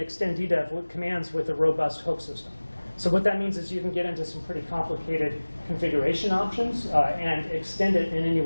DDEV with commands with a robust hook system. So what that means is you can get into some pretty complicated configuration options and extend it in any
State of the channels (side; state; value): both; inverted; correlation -1.00